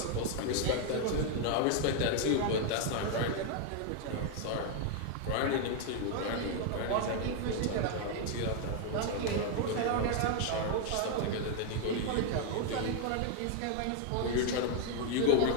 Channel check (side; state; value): both; different; correlation 0.00